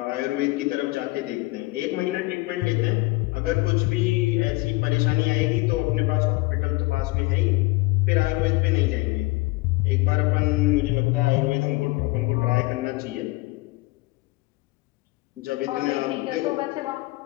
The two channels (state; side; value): quieter; right; 22.4 dB